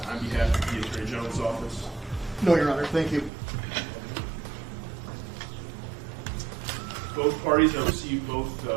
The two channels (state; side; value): drops out; left; at 3.3 s